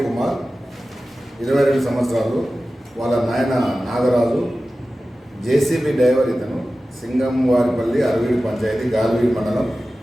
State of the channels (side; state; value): both; normal; correlation 0.95